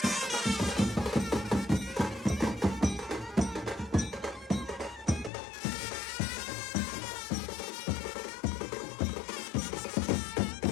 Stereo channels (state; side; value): drops out; right; at 5.3 s